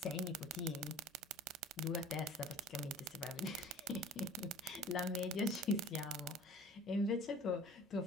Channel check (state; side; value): normal; both; correlation 0.46